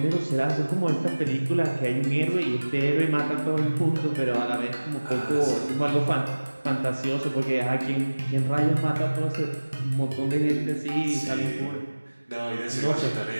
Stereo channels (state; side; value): inverted; both; correlation -1.00